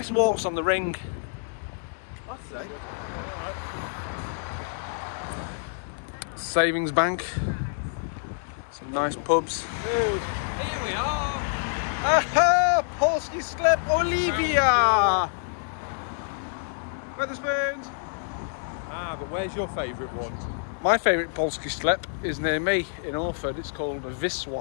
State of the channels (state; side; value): silent; right; 59 dB below the other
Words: walks on the ring. Alright. Savings Bank. Some nice pubs. Dude, here we are. Aha! Polski Sklep Olivia! Wetherspoons! But where's your favourite one? My favourite Polski Sklep is near me in Orford. It's called